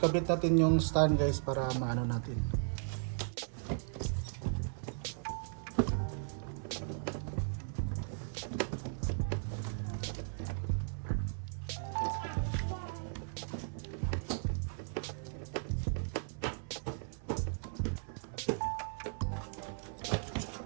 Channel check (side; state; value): left; silent; 53 dB below the other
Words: natin yung stand guys para maano natin.